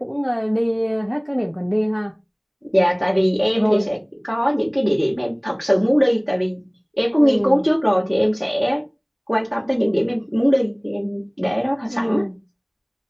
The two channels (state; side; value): identical; both; correlation 1.00